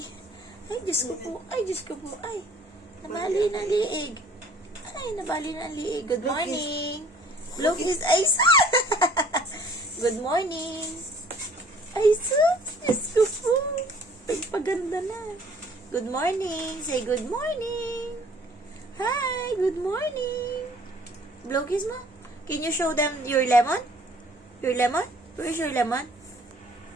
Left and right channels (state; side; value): normal; both; correlation 0.56